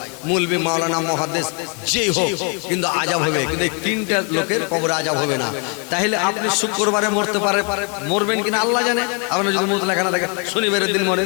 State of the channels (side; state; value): right; quieter; 36.0 dB